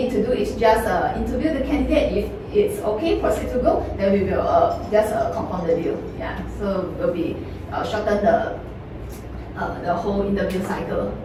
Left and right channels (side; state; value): both; identical; correlation 1.00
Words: to do is just interview the candidate. If it's okay, proceed to go, then we will just compound the deal. Yeah, so will be shorten the whole interview cycle.